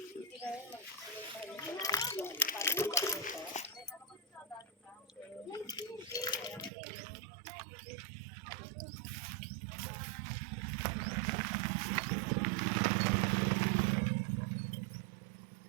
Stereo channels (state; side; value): drops out; left; at 6.7 s